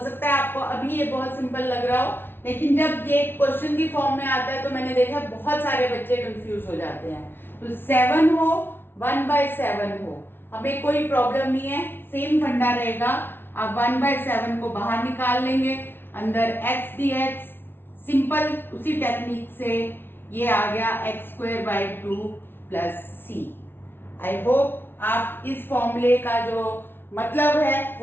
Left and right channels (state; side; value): late; right; 0.11 ms